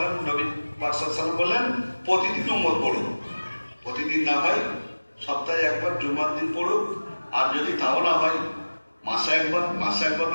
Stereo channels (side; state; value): both; inverted; correlation -1.00